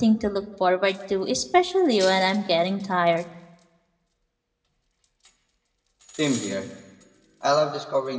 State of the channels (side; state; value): both; identical; correlation 1.00